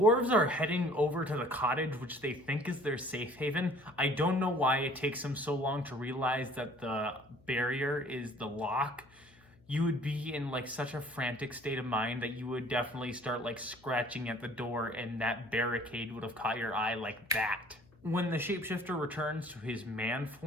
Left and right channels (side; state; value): left; noise; hum, 28 dB below the sound